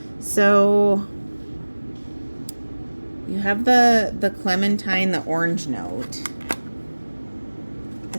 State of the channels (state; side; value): inverted; both; correlation -1.00